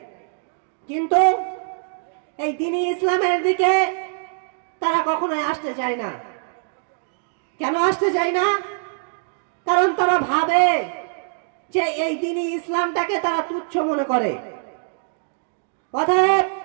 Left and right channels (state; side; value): silent; left; digital silence